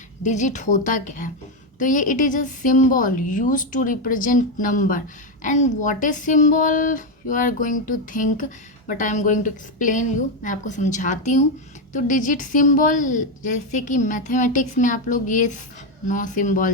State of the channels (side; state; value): both; normal; correlation 0.07